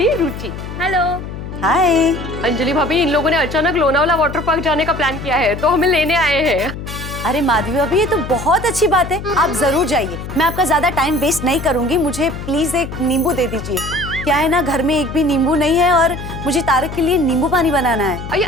रुचि। हेलो। हाय। अंजलि भाभी, इन लोगों ने अचानक लोनावला वाटर पार्क जाने का प्लान किया है, तो हमें लेने आए हैं। अरे माधवी भाभी, ये तो बहुत अच्छी बात है, आप जरूर जाइए। मैं आपका ज्यादा टाइम वेस्ट नहीं करूंगी, मुझे प्लीज एक नींबू दे दीजिए। क्या है ना, घर में एक भी नींबू नहीं है और मुझे तारक के लिए नींबू पानी बनाना है।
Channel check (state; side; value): noise; left; hum, 9 dB below the sound